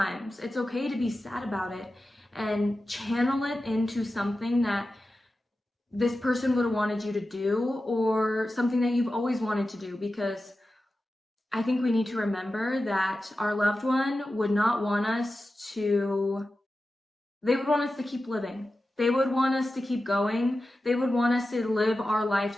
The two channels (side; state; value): both; normal; correlation 0.93